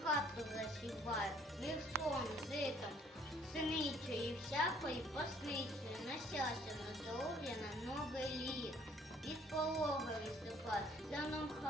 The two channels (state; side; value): normal; both; correlation 0.60